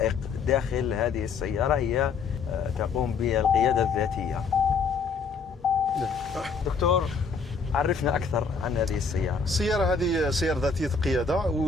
داخل هذه السيارة، هي تقوم بالقيادة الذاتية. دكتور، عرفنا أكثر عن هذه السيارة. السيارة هذه سيارة ذاتية القيادة،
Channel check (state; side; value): quieter; right; 5.1 dB